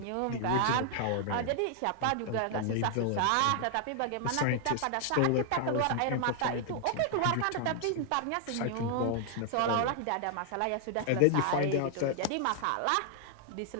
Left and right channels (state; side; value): different; both; correlation 0.00